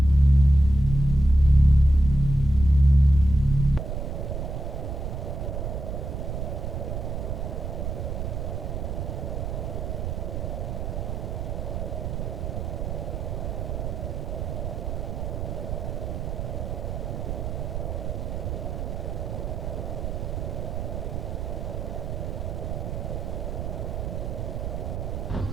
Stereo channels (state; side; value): noise; right; rumble, 3 dB below the sound